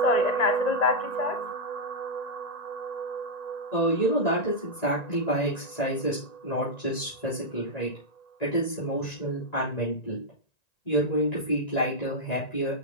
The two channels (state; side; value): late; right; 1.9 ms